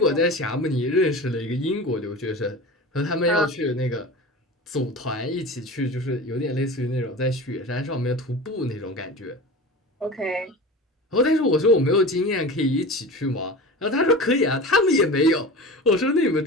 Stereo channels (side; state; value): both; normal; correlation 0.33